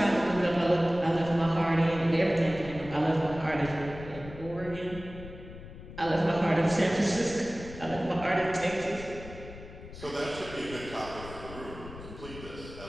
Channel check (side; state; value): left; noise; rumble, 14 dB below the sound